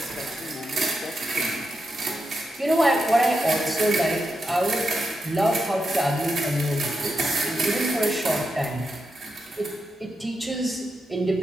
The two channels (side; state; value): both; normal; correlation 0.86